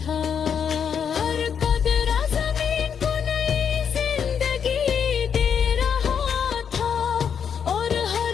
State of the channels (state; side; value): quieter; right; 7.5 dB